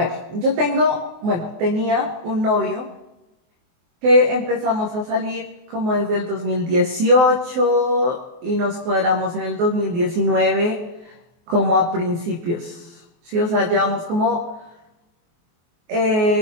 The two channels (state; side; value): late; left; 24 ms